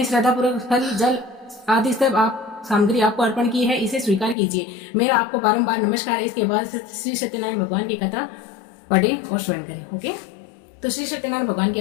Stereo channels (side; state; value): right; drops out; at 4.4 s